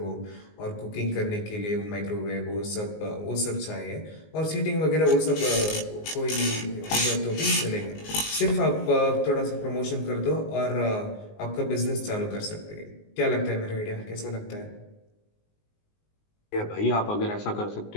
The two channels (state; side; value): late; right; 19 ms